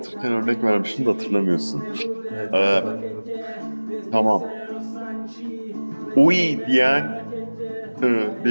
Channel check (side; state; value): both; inverted; correlation -1.00